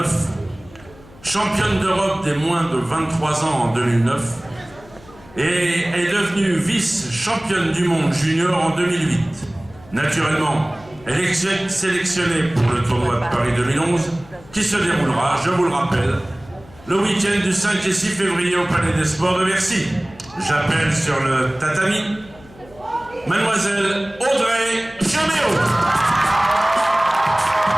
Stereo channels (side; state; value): left; noise; hum, 23 dB below the sound